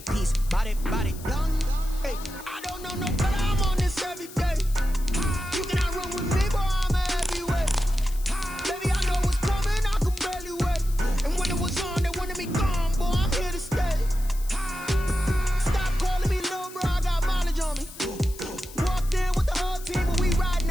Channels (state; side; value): noise; left; hiss, 17 dB below the sound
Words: body, body, done. Hey, I don't know no better. I'm on this every day. You cannot run with me, boy, I'm a heavyweight. Baby, I know what's coming, I could barely wait. And when it was on, they wanted me gone, boy, I'm here to stay. Stop calling me little bro, I got mileage on me. Walked in with the whole team and we riding